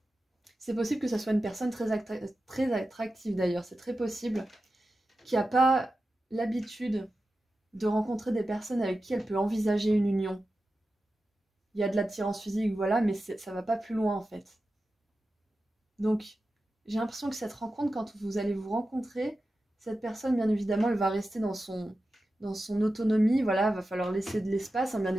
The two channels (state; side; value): normal; both; correlation 0.92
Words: c'est possible que ça soit une personne très attractive d'ailleurs, c'est très possible, qui n'a pas l'habitude de rencontrer des personnes avec qui elle peut envisager une union. Il y a de l'attirance physique, voilà, mais ça va pas plus loin en fait. Donc, j'ai l'impression que cette rencontre, quand vous allez vous rencontrer, cette personne, bien évidemment, elle va rester dans son autonomie, voilà, va falloir laisser de l'espace, hein, bien